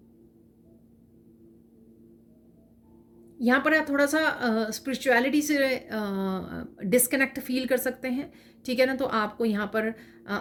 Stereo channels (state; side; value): identical; both; correlation 1.00